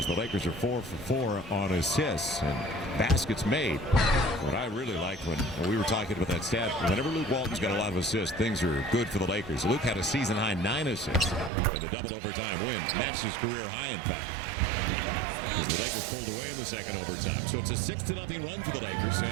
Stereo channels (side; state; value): left; drops out; at 11.5 s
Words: the Lakers are 4 for 4 on assists and baskets made. What I really liked when we were talking about that stat, whenever Luke Walton's got a lot of assists, things are good for the Lakers. Luke had a season-high 9 assists in the double overtime win. Matched his career high, in fact. As the Lakers pulled away in the second overtime. So it's a 6-0 run for the Lakers,